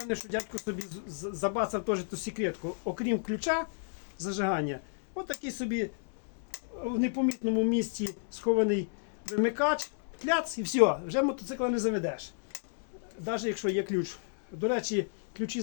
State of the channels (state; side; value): silent; right; digital silence